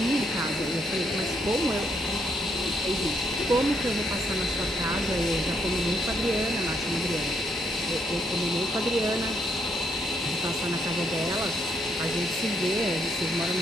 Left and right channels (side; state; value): both; normal; correlation 0.75